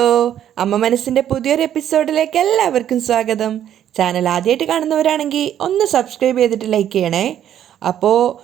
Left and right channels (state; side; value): quieter; left; 10.5 dB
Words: അമ്മ മനസ്സിൻ്റെ പുതിയൊരു എപ്പിസോഡിലേക്ക് എല്ലാവർക്കും സ്വാഗതം. ചാനൽ ആദ്യമായിട്ട് കാണുന്നവരാണെങ്കിൽ ഒന്ന് സബ്സ്ക്രൈബ് ചെയ്തിട്ട് ലൈക്ക് ചെയ്യണേ. അപ്പോൾ